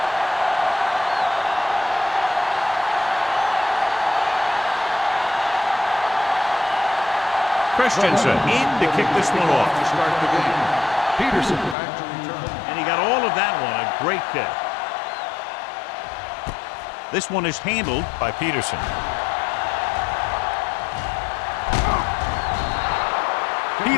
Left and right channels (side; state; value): right; drops out; at 11.8 s